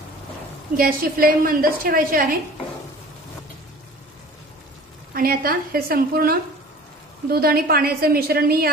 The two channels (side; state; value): both; normal; correlation 0.44